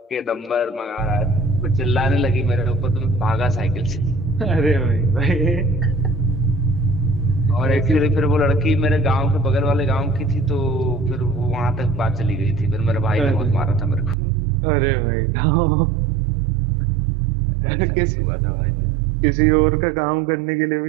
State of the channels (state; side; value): drops out; left; at 14.2 s